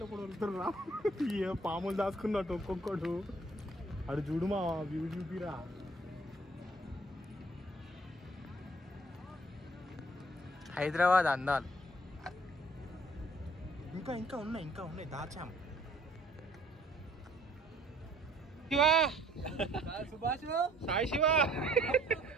ఒకడు వెళ్తుర్రా. ఏ పాములు దాచుకున్నట్టు ఒక్కొక్కడు. అడు చూడు మా వ్యూ చూపిరా. హైదరాబాద్ అందాలు ఇంకా ఉన్నాయి దాచాము. సాయి శివ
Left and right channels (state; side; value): normal; both; correlation 0.59